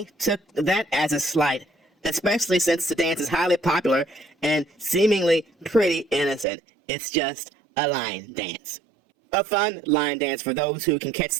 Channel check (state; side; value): drops out; left; at 6.5 s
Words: took that as a slight, especially since the dance is highly popular and seemingly pretty innocent. It's just a line dance. A fun line dance for those who can catch